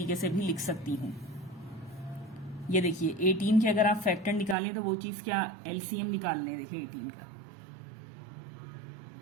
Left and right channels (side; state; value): left; drops out; at 4.5 s